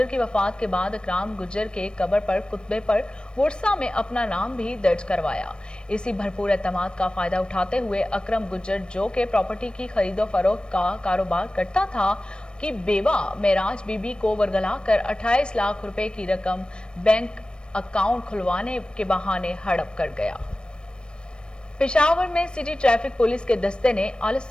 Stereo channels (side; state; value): right; late; 0.053 ms